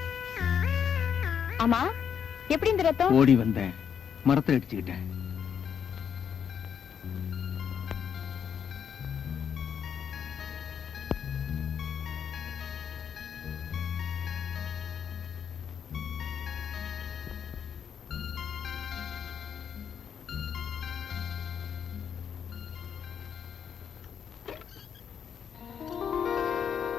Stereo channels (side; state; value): right; quieter; 7.8 dB